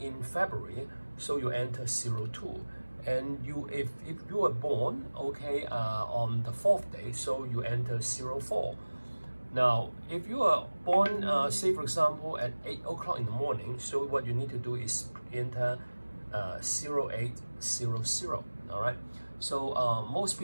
February, so you enter 02, and if you were born, okay, on the 4th day, so you enter 04. Now, if you are born, say for example, at 8 o'clock in the morning, so what you need to do is enter 0800. All right. So most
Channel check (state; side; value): inverted; both; correlation -1.00